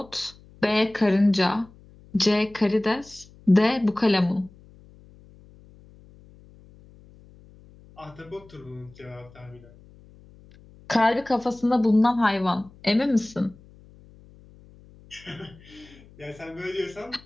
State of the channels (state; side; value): noise; left; hum, 24 dB below the sound